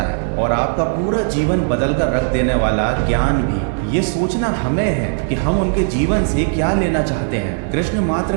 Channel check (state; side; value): silent; left; digital silence